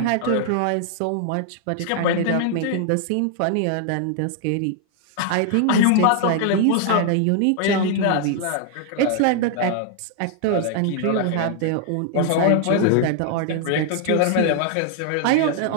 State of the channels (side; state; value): both; different; correlation 0.00